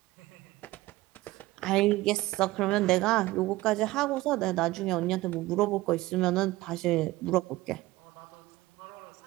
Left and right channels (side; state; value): left; quieter; 18.4 dB